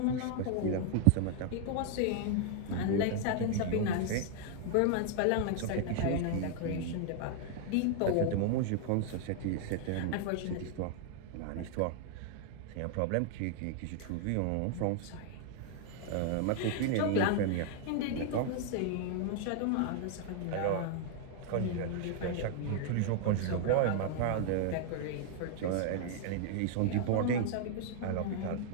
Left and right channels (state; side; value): different; both; correlation 0.00